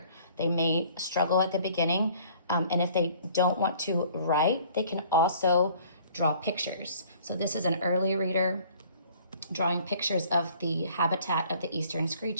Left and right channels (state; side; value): inverted; both; correlation -0.55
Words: They may struggle at the beginning, and if they don't want to write, they can also draw pictures. So this is an early reader drawing pictures of the habitat of the Eastern